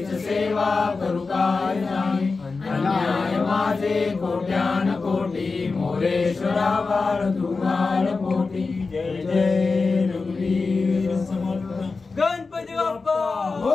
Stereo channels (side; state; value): right; quieter; 4.2 dB